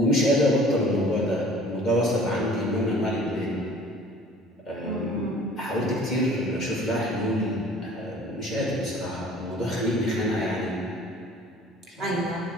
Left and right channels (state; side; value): normal; both; correlation 0.49